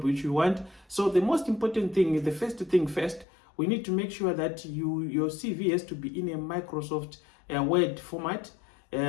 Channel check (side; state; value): right; drops out; at 3.2 s